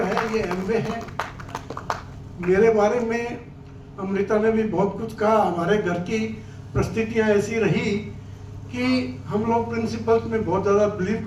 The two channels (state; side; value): identical; both; correlation 1.00